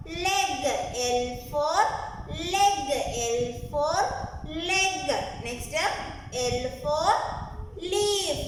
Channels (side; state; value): both; identical; correlation 1.00